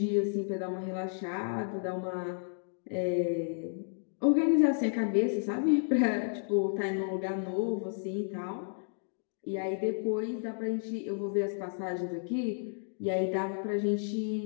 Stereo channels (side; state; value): right; silent; digital silence